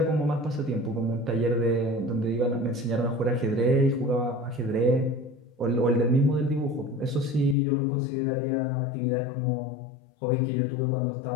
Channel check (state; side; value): drops out; right; at 7.6 s